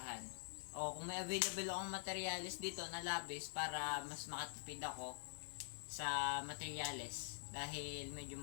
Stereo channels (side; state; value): right; silent; digital silence